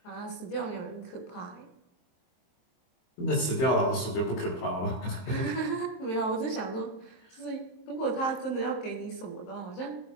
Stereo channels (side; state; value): right; late; 23 ms